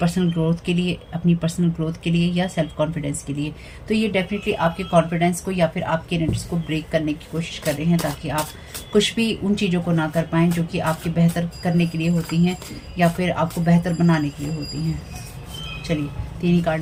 ग्रोथ के लिए या सेल्फ कॉन्फिडेंस के लिए। तो ये डेफिनेटली आपके कॉन्फिडेंस को या फिर आपके एनर्जीज को ब्रेक करने की कोशिश कर रहे हैं, ताकि आप कुछ भी उन चीज़ों को ना कर पाएँ जो कि आपके बेहतर करने के लिए होती हैं या फिर आपको बेहतर बनाने के लिए होती हैं। चलिए 3 ही कार्ड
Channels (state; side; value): identical; both; correlation 1.00